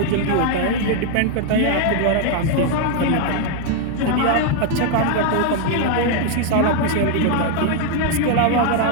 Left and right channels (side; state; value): both; different; correlation 0.00